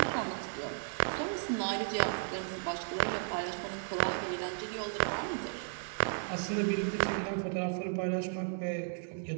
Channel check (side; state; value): left; silent; digital silence